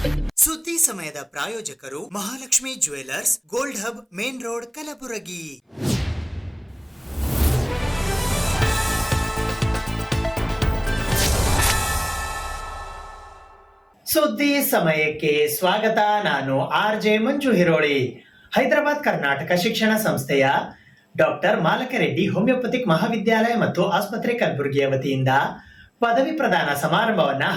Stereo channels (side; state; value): both; identical; correlation 1.00